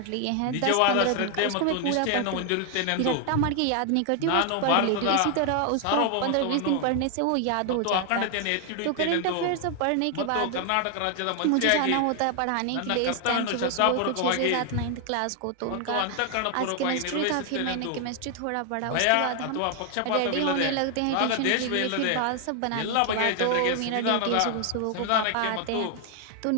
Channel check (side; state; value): both; different; correlation 0.00